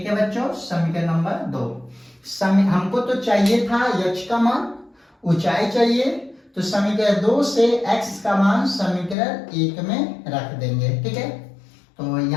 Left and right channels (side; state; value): right; drops out; at 9.2 s